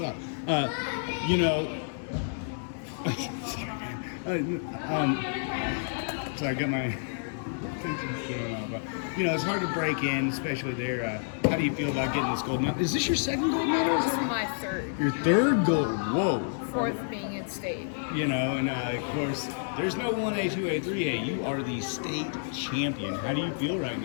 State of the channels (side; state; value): right; silent; 58 dB below the other